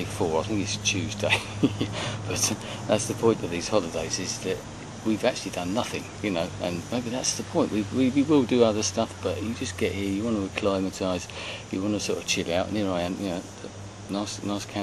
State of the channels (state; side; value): identical; both; correlation 1.00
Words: 4, I think it's Tuesday. But that's the point of these holidays, is that we've actually done nothing, you know, and maybe that's the point. We will do other stuff, but you just get here, you want to acclimatise, you want to sort of chill out, and here I am, you know, nice